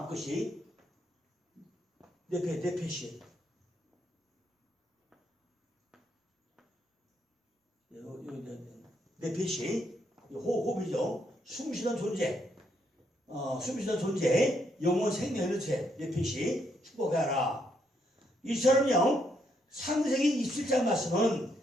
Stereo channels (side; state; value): both; normal; correlation 0.75